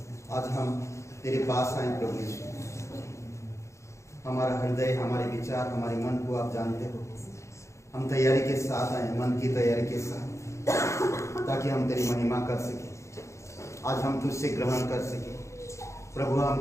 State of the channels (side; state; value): right; late; 0.14 ms